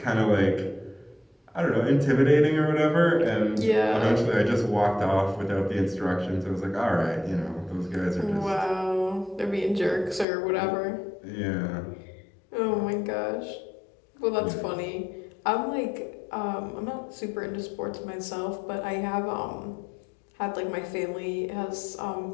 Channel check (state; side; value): drops out; right; at 10.2 s